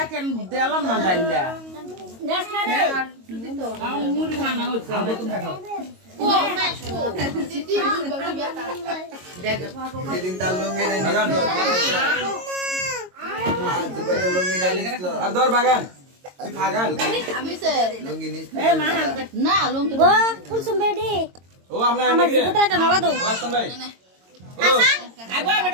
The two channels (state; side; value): late; left; 22 ms